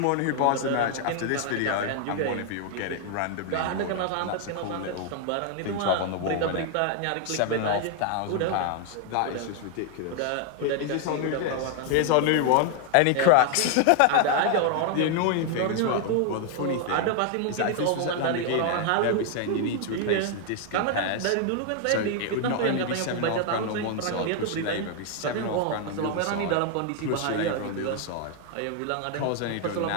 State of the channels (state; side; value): different; both; correlation 0.00